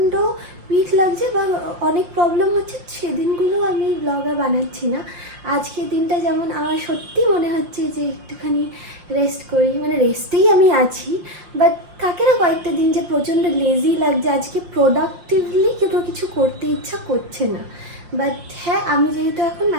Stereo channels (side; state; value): left; late; 5.7 ms